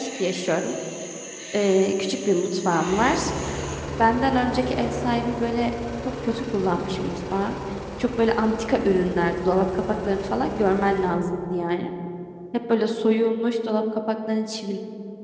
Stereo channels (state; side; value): identical; both; correlation 1.00